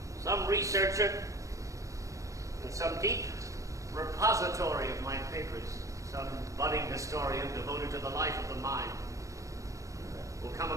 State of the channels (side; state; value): left; late; 0.15 ms